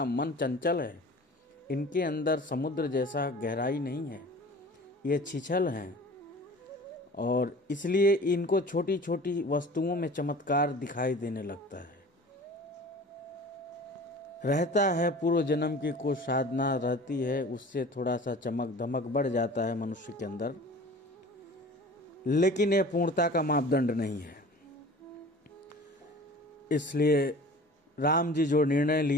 मन चंचल है, इनके अंदर समुद्र जैसा गहराई नहीं है, ये छिछल हैं और इसलिए इनको छोटी छोटी वस्तुओं में चमत्कार दिखाई देने लगता है। रहता है पूर्व जन्म की कुछ साधना रहती है, उससे थोड़ा सा चमक धमक बढ़ जाता है मनुष्य के अंदर, लेकिन यह पूर्णता का मापदंड नहीं है। इसलिए राम जी जो निर्णय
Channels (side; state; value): both; normal; correlation 0.42